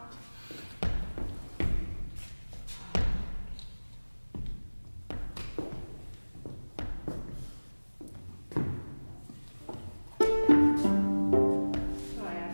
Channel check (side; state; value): both; inverted; correlation -1.00